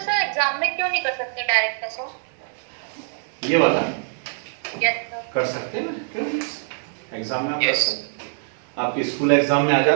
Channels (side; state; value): left; silent; 63 dB below the other